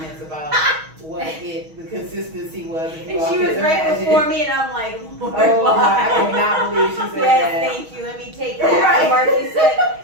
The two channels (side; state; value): left; late; 6.3 ms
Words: about what the consistency was. if you And all she can was right imagine. before me, and I'm like, Lord, Oh, why? I cannot believe she said Yes, that. thank you. Let me take that. Right. Marky said,